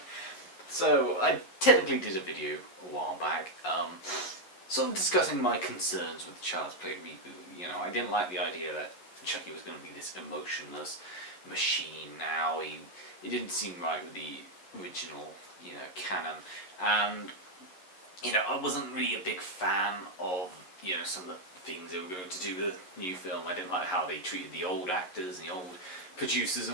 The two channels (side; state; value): right; late; 11 ms